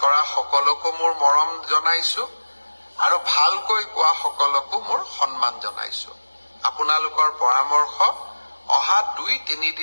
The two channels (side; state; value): both; inverted; correlation -1.00